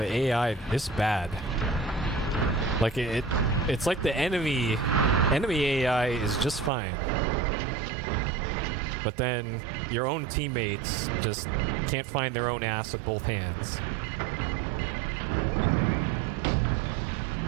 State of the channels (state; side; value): drops out; left; at 6.7 s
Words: AI this bad? Like, it's like the enemy AI is just fine, but then your own teammates just can't find their own ass with both hands.